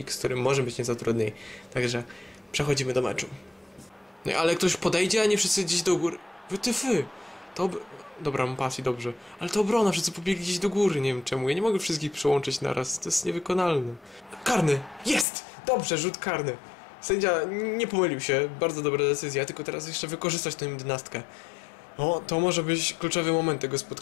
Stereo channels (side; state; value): right; drops out; at 15.2 s